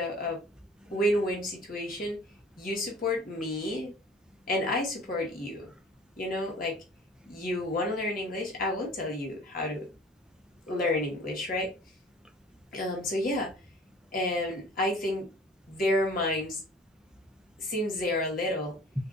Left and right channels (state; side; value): normal; both; correlation 0.47